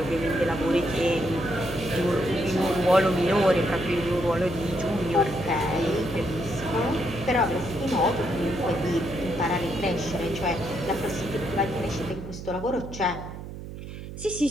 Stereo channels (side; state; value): right; noise; hum, 11 dB below the sound